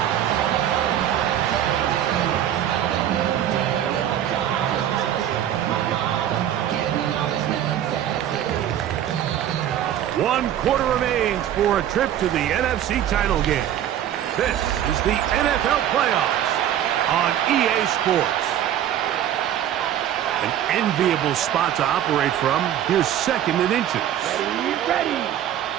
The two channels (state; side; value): quieter; left; 11.0 dB